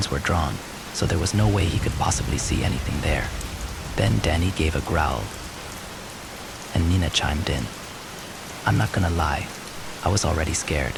were drawn, so there was no way he could possibly see anything there. Then Danny gave a growl, and Nina chimed in. I'm not gonna lie, I was already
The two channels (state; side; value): identical; both; correlation 1.00